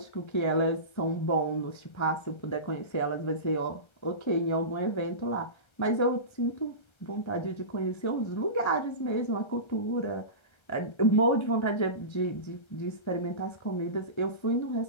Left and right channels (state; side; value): late; right; 1.3 ms